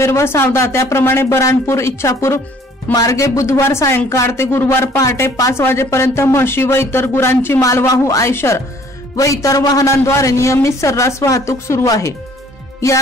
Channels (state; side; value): normal; both; correlation 0.57